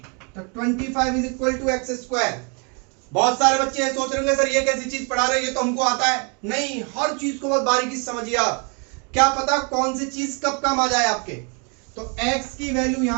तो 25 is equal to x square. बहुत सारे बच्चे सोच रहे होंगे सर ये कैसी चीज पढ़ा रहे हैं, ये तो हमको आता है। नहीं, हर चीज को बहुत बारीकी से समझिए आप, क्या पता कौन सी चीज कब काम आ जाए आपके। तो x की वैल्यू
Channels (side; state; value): left; quieter; 35.5 dB